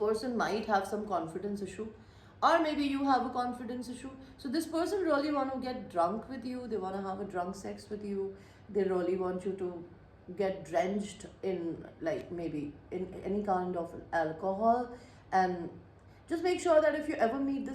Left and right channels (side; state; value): both; identical; correlation 1.00